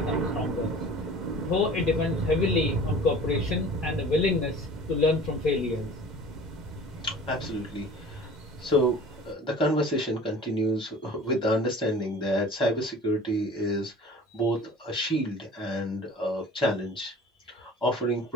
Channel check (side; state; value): both; normal; correlation 0.44